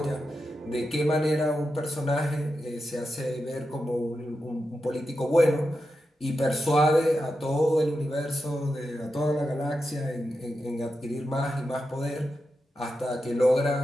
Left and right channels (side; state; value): both; normal; correlation 0.89